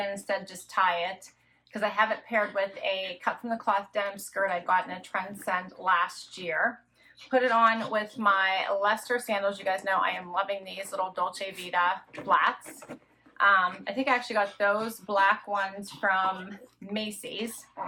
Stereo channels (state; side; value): identical; both; correlation 1.00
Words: instead just tie it, because I have it paired with a cut from the cloth denim skirt I got in a Trendsend last year. Put it on with my Leicester sandals. You guys know I am loving these little Dolce Vita flats. I think I actually got those black ones from Macy's